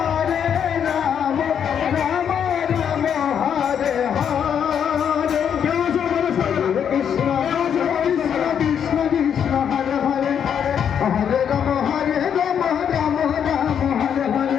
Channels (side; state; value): right; quieter; 8.2 dB